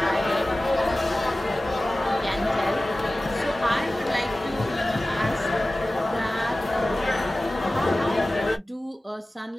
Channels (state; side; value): normal; both; correlation 0.97